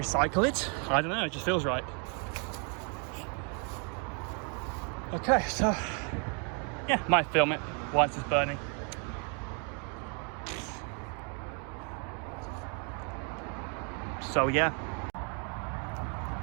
it? I don't know, it just feels right. Okay, so yeah, might film it whilst it's burning. So yeah,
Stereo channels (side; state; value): left; quieter; 37.5 dB